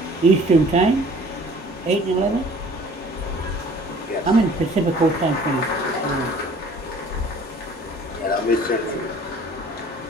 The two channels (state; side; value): normal; both; correlation 0.51